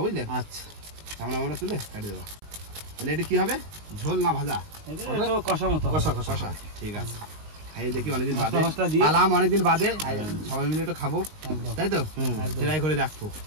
বুঝলে। আচ্ছা সামনে আমরা তুলে কাটি দেবা। তাহলে এটা কি হবে? ঝোল না ভাজা? তো কষা মতো কষা কষা। ঠিক আছে, খাই দেখি অনেকদিন বাদে। মশলা দিয়ে আলাম অনেকদিন বাদে, সবাই মিলে একটু খাবো, তাই তো? ট্রাই করে দেখবো।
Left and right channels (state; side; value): late; left; 19 ms